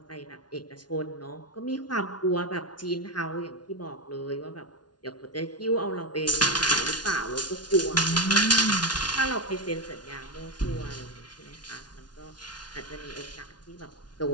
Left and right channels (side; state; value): right; late; 0.70 ms